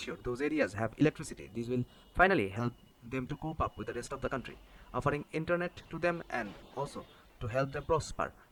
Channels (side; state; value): both; identical; correlation 1.00